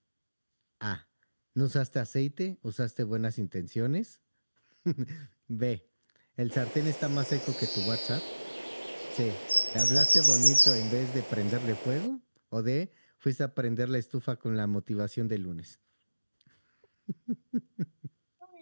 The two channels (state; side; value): inverted; both; correlation -1.00